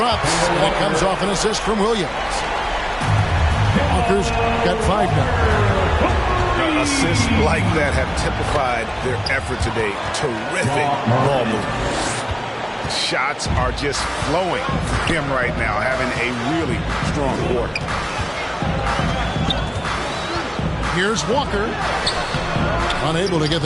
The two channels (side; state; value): both; identical; correlation 1.00